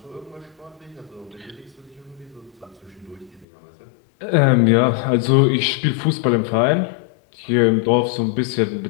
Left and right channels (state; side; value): drops out; right; at 3.5 s